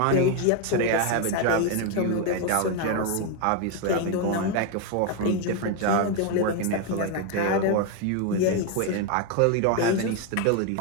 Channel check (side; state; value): both; different; correlation 0.01